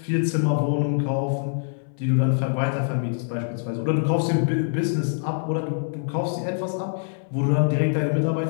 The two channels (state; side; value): silent; right; 61 dB below the other